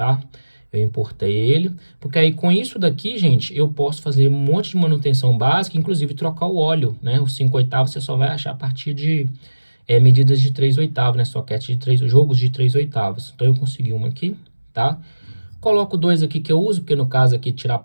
Eu importei ele, porque aí com isso daqui, gente, eu posso fazer um monte de manutenção básica, inclusive trocar o óleo, né? O 5/8 você só vai achar a partir de medidas de 3/8, né? Soquete de 3, jogos de 3/8. Então eu consegui uma aqui, tá? Coloco dois aqui que eu uso, porque no caso aqui tirar a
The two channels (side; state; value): both; inverted; correlation -1.00